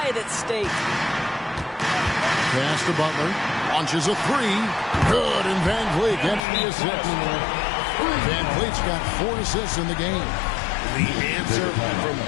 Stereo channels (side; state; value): right; drops out; at 6.4 s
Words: at stake. Pass to Butler. Launches a 3. Good, and Van Vliet gets the assist. Van Vliet's got 4 assists in the game. The answer from